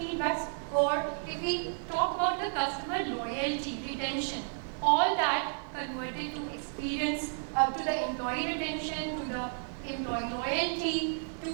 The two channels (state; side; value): silent; left; digital silence